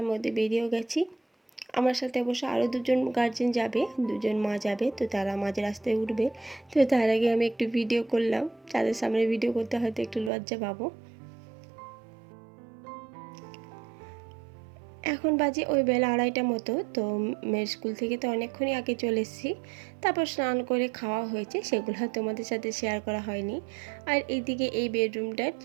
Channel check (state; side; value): drops out; left; at 10.3 s